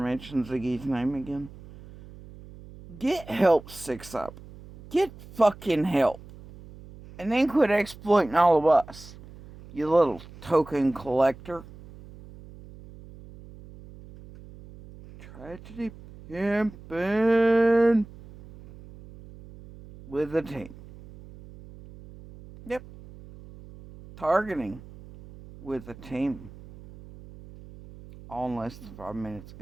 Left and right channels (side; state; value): right; noise; hum, 18 dB below the sound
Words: Ziggy's name again. Get help, 6 up. Get fucking help. And then quit exploiting all of us, you little token collector. Tragedy pimpin' with a team. Yep. Targeting with a team. All in less than 5 minutes.